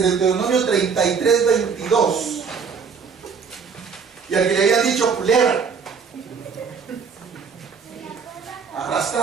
el Deuteronomio 33:22, y al que le habían dicho culebra,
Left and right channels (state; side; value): quieter; left; 5.9 dB